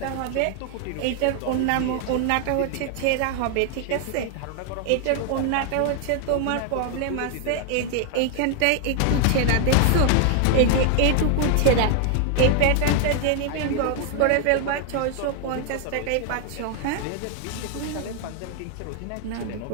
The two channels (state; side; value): different; both; correlation 0.00